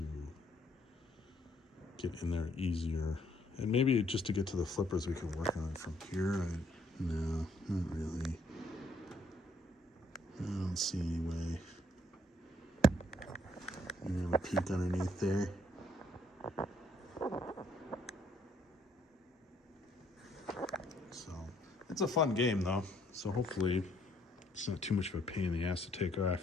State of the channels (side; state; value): both; normal; correlation 0.67